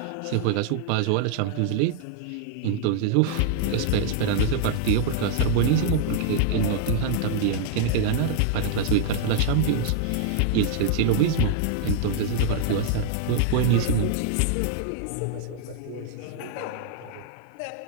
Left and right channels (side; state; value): both; different; correlation -0.01